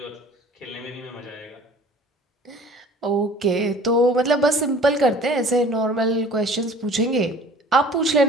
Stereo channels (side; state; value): both; normal; correlation 0.48